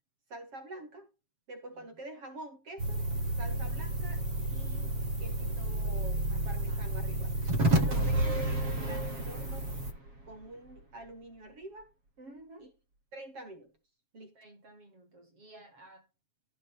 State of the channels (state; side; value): late; left; 7.3 ms